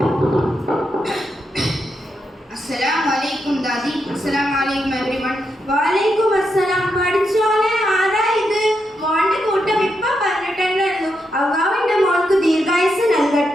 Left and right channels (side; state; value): both; normal; correlation 0.83